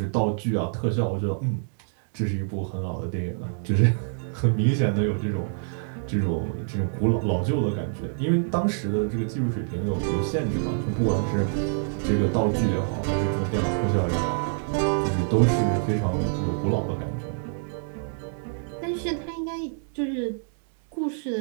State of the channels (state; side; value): silent; left; digital silence